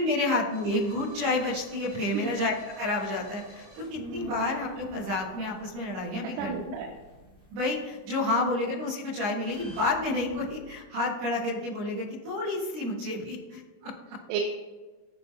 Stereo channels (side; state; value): left; late; 30 ms